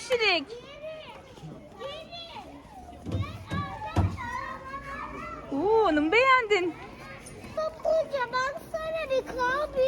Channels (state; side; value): identical; both; correlation 1.00